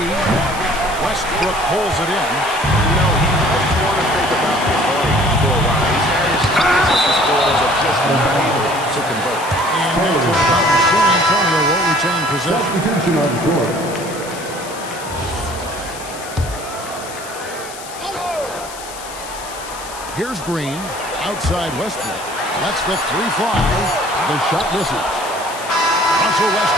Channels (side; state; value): left; noise; hiss, 14 dB below the sound